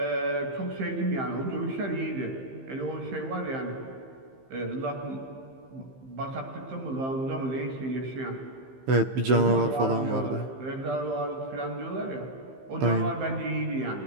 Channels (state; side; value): late; left; 15 ms